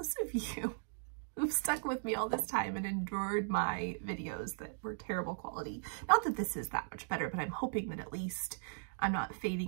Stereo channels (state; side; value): silent; left; digital silence